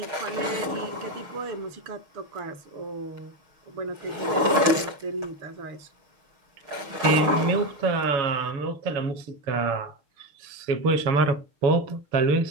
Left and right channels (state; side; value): late; left; 6.5 ms